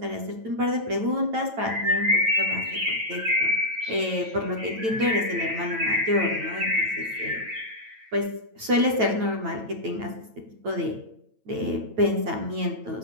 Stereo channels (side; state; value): left; late; 9.1 ms